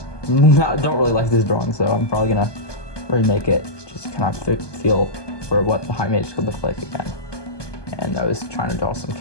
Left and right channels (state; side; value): late; right; 1.2 ms